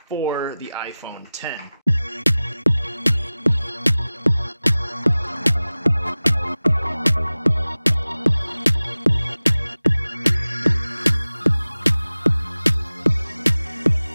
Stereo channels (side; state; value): both; inverted; correlation -0.97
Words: for the iPhone X.